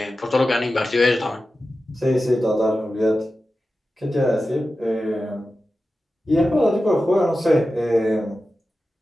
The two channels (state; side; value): normal; both; correlation 0.93